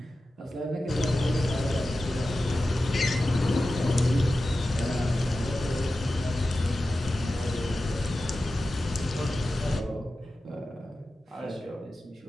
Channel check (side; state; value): both; normal; correlation 0.94